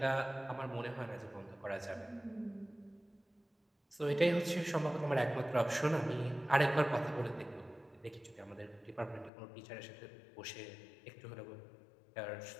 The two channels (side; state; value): right; drops out; at 9.3 s